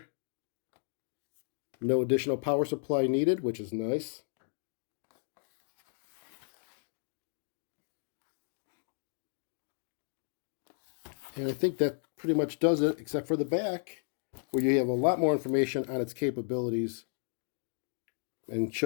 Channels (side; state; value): right; silent; digital silence